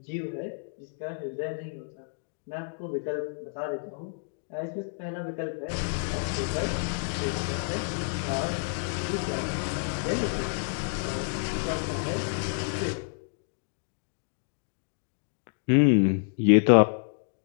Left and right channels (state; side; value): silent; right; digital silence